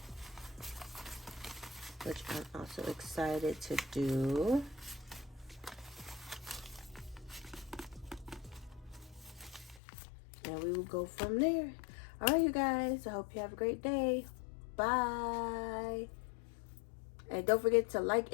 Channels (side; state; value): right; drops out; at 9.8 s